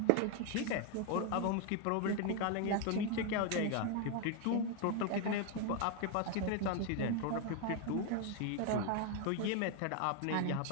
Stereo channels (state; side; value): different; both; correlation 0.01